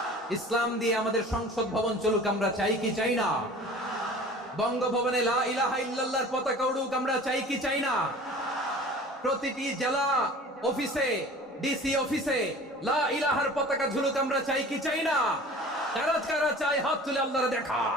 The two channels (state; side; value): normal; both; correlation 0.43